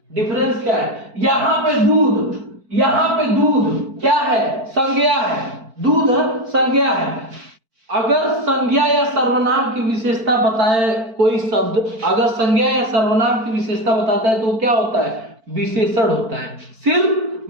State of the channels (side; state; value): left; late; 4.5 ms